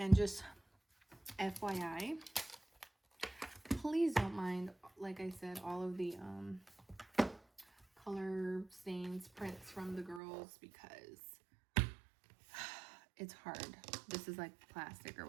just FYI, please don't mind, like I said, all of the color stains, prints from the girls, because it's hard. This is like plastic or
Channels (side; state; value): left; drops out; at 10.2 s